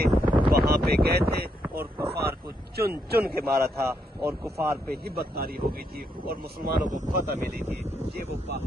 وہاں پہ گئے تھے اور کفار کو چن چن کے مارا تھا، اور کفار پہ ہبت طاری ہو گئی تھی اور مسلمانوں کو فتح ملی تھی۔ یہ وہ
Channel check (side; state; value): both; normal; correlation 0.77